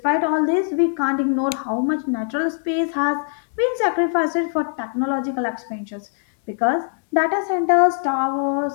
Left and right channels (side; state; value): right; silent; digital silence